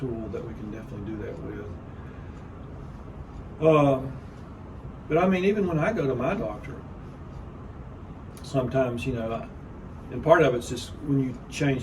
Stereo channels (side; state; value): both; identical; correlation 1.00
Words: that we can definitely do that with. But I mean, even when I go to my doctor, sometimes and part of it's just when you